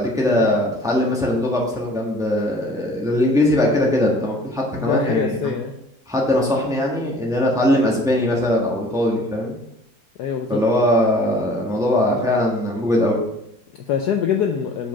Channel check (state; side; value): normal; both; correlation 0.50